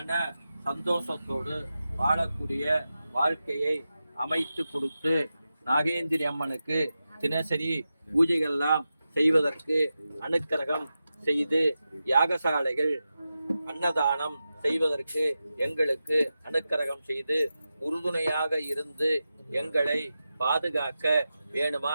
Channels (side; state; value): both; inverted; correlation -0.92